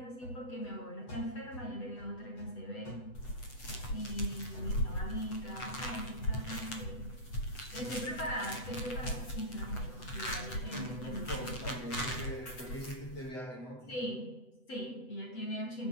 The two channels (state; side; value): late; right; 8.0 ms